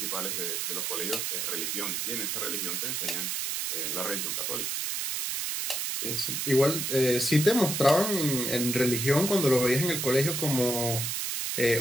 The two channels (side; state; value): right; noise; hiss, 1 dB below the sound